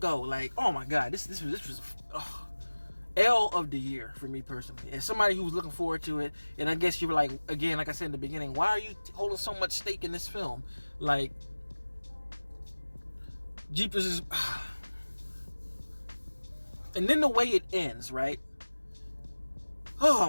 go. Like, oh my god, this was L of the year for me personally. As somebody who was looking forward to it, and I guess you were like, again, like I said in the beginning, why are you holding so much stake in this film? Like, Jeepers is... And then the way it ends, right? Oh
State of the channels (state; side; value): inverted; both; correlation -1.00